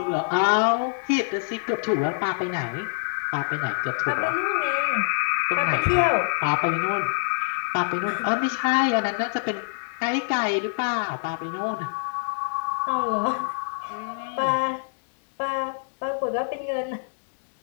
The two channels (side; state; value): right; silent; digital silence